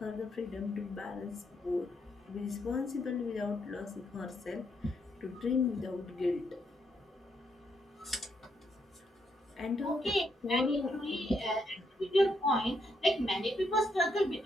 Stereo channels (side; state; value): both; normal; correlation 0.77